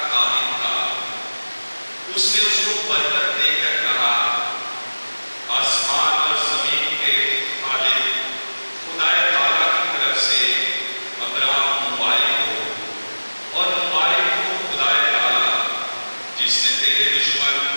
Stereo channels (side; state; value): both; inverted; correlation -1.00